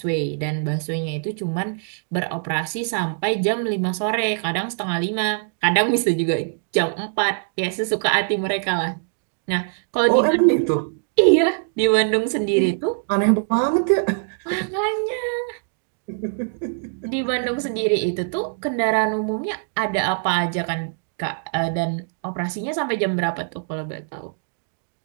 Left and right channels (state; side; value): silent; left; digital silence